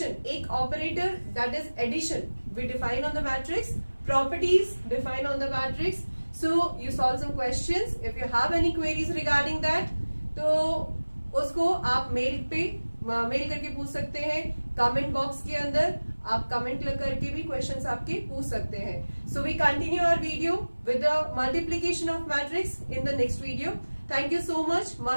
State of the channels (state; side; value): inverted; both; correlation -1.00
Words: एक operator, that is addition, we define on the matrix, properties define on the matrix. So you solve some questions. If you have any queries regarding that, तो उसको आप mail करके पूछ सकते हैं. कमेंट बॉक्स के अंदर आप कमेंट करके भी क्वेश्चंस आपके पूछ सकते हैं. So we continue our video with the multiplication of matrix in the next video. Thank you so much.